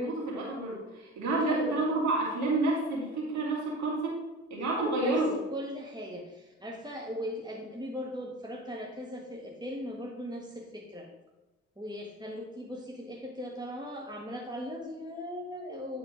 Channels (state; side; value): normal; both; correlation 0.34